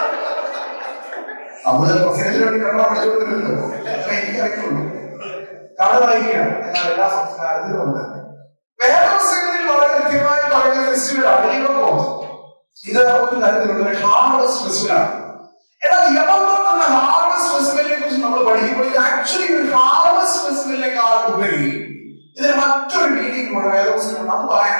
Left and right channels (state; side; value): inverted; both; correlation -1.00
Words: നമ്മള് പ്രസംഗത്തിന് വേണ്ടി കണ്ണ പഠിച്ചുകൊണ്ടിരുന്നല്ലോ, എനിക്കറിയുള്ളൂ. കഥ വായിക്കാം. എന്നാൽ എല്ലാ സംസ്കാരത്തിലും ഉണ്ട്. വേറെ പുസ്തകത്തിൽ വളരെ കൃത്യമായി പറയുന്ന ഫെസ്റ്റിവലാണ് യവകോത്ത്. ഇത് ഒരു തരത്തിലുള്ള ഒരു ഹാർവസ്റ്റ് ഫെസ്റ്റിവലാണ്. എന്നാൽ യവകോത്ത് എന്ന ഹാർവസ്റ്റ് ഫെസ്റ്റിവലിനെ കുറിച്ച് നമ്മൾ പഠിക്കുമ്പോൾ ഇത് ആക്ച്വലി ഒരു ഹാർവസ്റ്റ് ഫെസ്റ്റിവലിനേക്കാൾ ഉപരി ഇതിന് മറ്റൊരു മീനിങ് കൂടെ വേദപുസ്തകമുണ്ട്. അത്